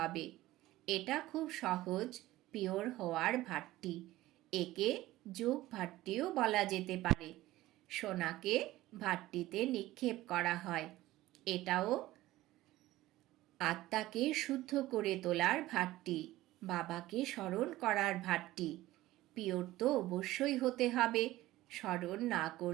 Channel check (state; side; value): quieter; left; 16.6 dB